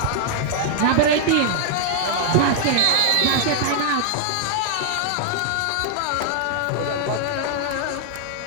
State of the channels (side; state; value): both; different; correlation 0.00